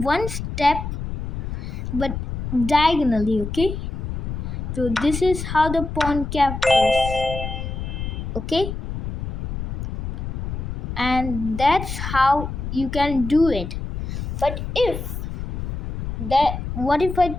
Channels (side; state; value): left; noise; rumble, 5 dB below the sound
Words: step, but diagonally. Okay, so this is how the pawn captures. Okay, and that's how you can do it. But what if I